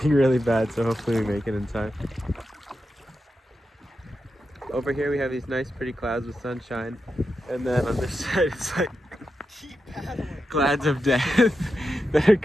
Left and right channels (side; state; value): both; normal; correlation 0.88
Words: really bad, so hopefully we make it in time. Over here we have these nice pretty clouds with sunshine, and then on this side it's like clouds of death that are